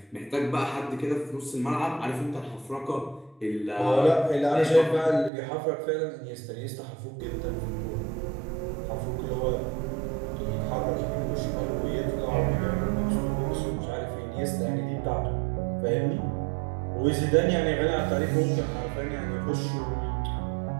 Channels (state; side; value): drops out; left; at 5.3 s